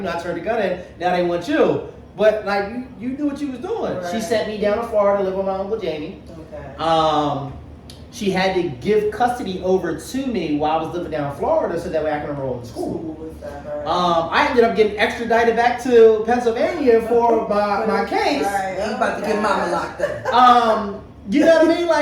turned the gun in. Now they want you. But, like, you knew what you was doing. Right. She sent me down to Florida to live with my Uncle Jamie. Okay. She had to give custody over to me while I was living down in Florida so that way I can enroll in school. I ended up getting extradited back to Pennsylvania for my case. Right. You about to get mama locked up. You know what I mean?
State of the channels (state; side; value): identical; both; correlation 1.00